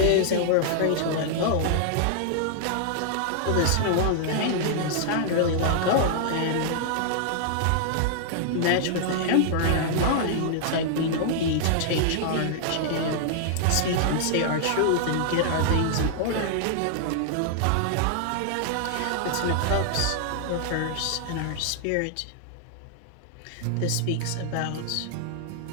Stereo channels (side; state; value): both; different; correlation -0.01